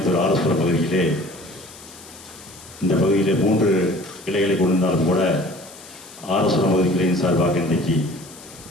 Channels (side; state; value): left; noise; hiss, 19 dB below the sound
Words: ஆர்எஸ்புரம் பகுதியிலே இந்த பகுதியிலே 3 கிளைகளை கொண்டிருந்தாலும் கூட ஆர்எஸ்புரம் பகுதி கிளையின் சார்பாக இன்றைக்கு